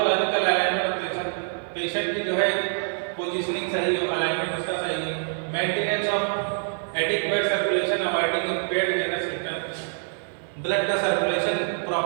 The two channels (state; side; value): silent; left; digital silence